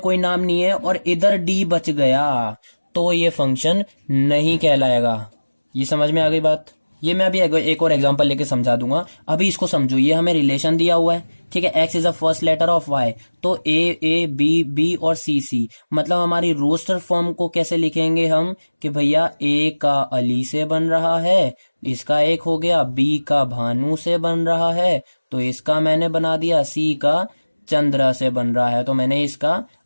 नाम नहीं है और इधर डी बच गया, तो ये फंक्शन नहीं कहलाएगा। ये समझ में आ गई बात। ये मैं अभी एक और एग्जांपल लेके समझा दूंगा, अभी इसको समझो। ये हमें रिलेशन दिया हुआ है, ठीक है, x is a first letter of y, तो a b और c, मतलब हमारी रोस्टर फॉर्म को कैसे लिखेंगे हम, कि भैया a का अली से बन रहा है, इसका एक हो गया, b का भानु से बन रहा है, तो इसका मैंने बना दिया, c का चंद्रा से बन रहा है, तो मैंने इसका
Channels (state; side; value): inverted; both; correlation -1.00